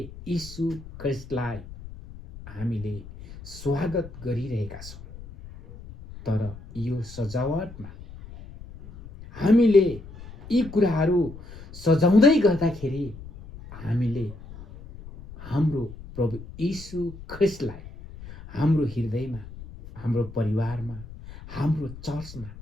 यीशु ख्रीष्टलाई हामीले स्वागत गरिरहेका छौँ। तर यो सजावटमा हामीले यी कुराहरू सजाउँदै गर्दाखेरि हामीले हाम्रो प्रभु यीशु ख्रीष्टलाई हाम्रो हृदयमा, हाम्रो परिवारमा, हाम्रो चर्चमा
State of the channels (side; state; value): left; noise; rumble, 15 dB below the sound